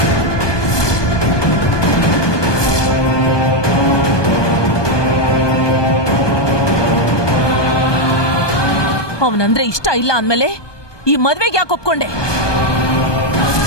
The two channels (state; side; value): late; right; 1.2 ms